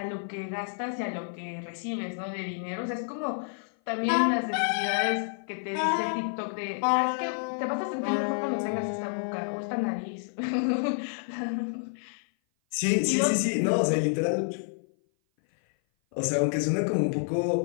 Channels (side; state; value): right; silent; 56 dB below the other